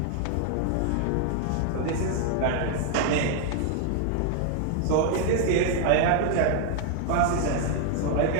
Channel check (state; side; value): different; both; correlation 0.00